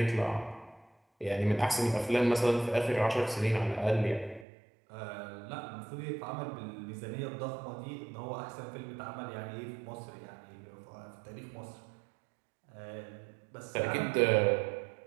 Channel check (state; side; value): drops out; left; at 4.5 s